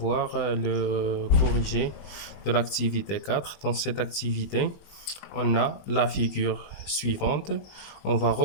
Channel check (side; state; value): right; late; 20 ms